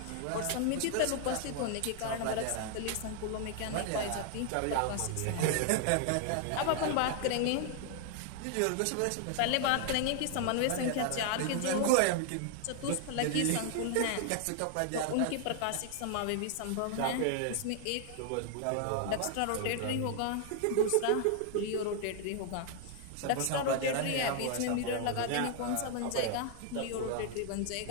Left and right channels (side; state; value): both; different; correlation 0.00